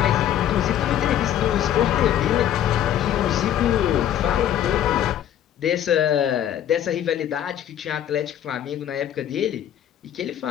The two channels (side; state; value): right; quieter; 10.8 dB